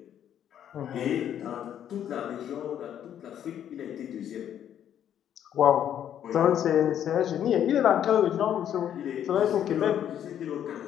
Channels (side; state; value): right; quieter; 10.0 dB